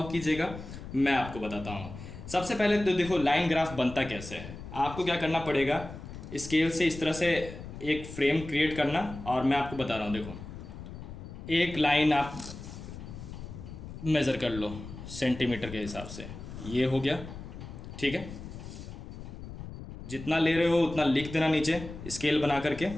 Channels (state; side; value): noise; left; rumble, 11 dB below the sound